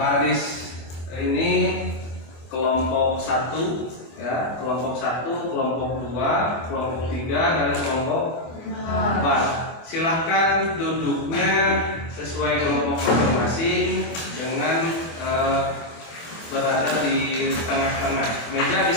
ini kelompok 1, ya, kelompok 1, kelompok 2, kelompok 3, dan kelompok 4. Silahkan duduknya sesuai kelompok masing-masing dengan berada di tengah-tengah. Meja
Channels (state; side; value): late; right; 25 ms